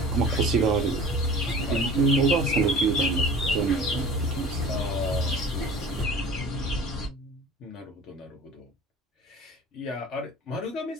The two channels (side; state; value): both; normal; correlation 0.42